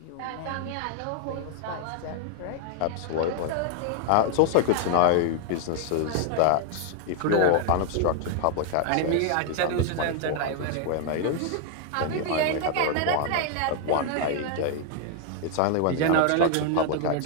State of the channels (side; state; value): both; different; correlation 0.00